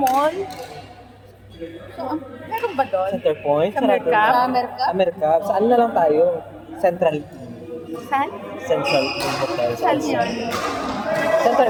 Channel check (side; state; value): both; identical; correlation 1.00